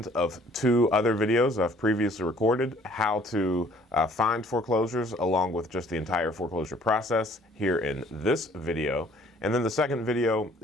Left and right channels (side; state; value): both; normal; correlation 0.57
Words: of two other videos I've previously recorded, how to find foreclosures along with just the entire foreclosure process here in this video. And then the second video